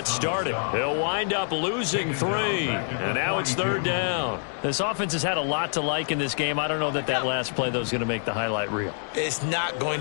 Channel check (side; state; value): right; silent; digital silence